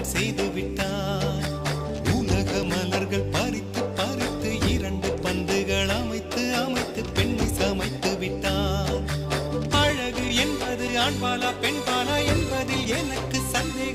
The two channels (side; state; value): both; identical; correlation 1.00